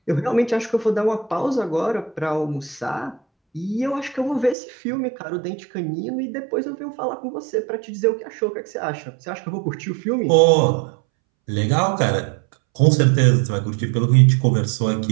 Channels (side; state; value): left; drops out; at 4.5 s